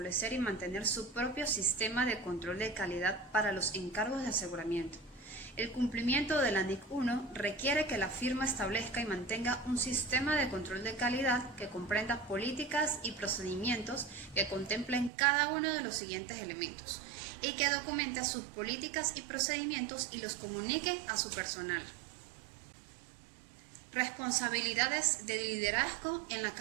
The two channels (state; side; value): drops out; left; at 15.1 s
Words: y mantener su propio sistema de control de calidad para los encargos de aseguramiento. El cumplimiento de la NIC 1 requiere que la firma establezca y mantenga un sistema de control de calidad que comprenda políticas y procedimientos que contemplen cada uno de los siguientes elementos y que documente sus políticas y procedimientos y los comunique a su personal. Responsabilidades de liderazgo en la